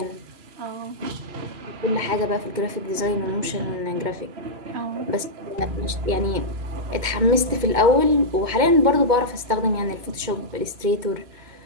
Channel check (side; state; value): left; late; 2.2 ms